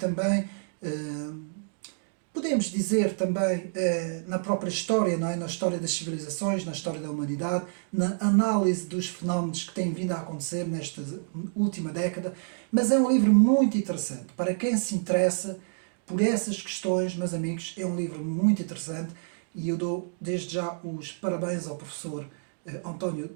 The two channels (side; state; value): left; silent; digital silence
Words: podemos dizer também, na própria história, não é? Na história das civilizações, na história da humanidade, na análise dos fenómenos que têm vindo a acontecer nesta última década. Mas é um livro muito interessante. Para quem se interessa por essas questões, meus amigos, é um livro muito interessante e eu dou desde já os parabéns ao professor António